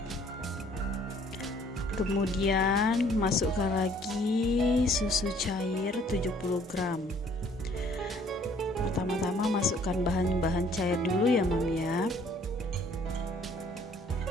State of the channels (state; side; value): normal; both; correlation 0.59